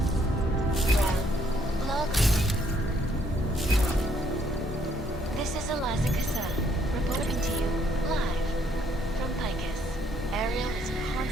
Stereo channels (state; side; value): normal; both; correlation 0.68